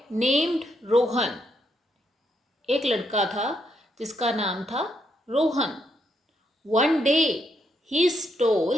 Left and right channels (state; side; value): normal; both; correlation 0.77